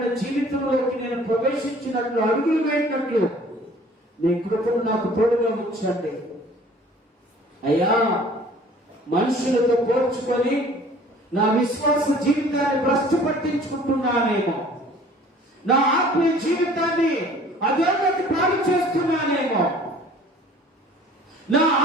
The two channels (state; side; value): normal; both; correlation 0.51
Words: జీవితంలోకి నేను ప్రవేశించినట్లు, అడుగులు వేసినట్లు నీ కృపను నాకు తోడుగా ఉంచండి అయ్యా. మనుషులతో పోల్చుకొని నా విశ్వాస జీవితాన్ని భ్రష్టు పట్టించుకుంటున్నానేమో, నా ఆత్మీయ జీవితాన్ని అధోగతి పాలు చేస్తున్నానేమో, నా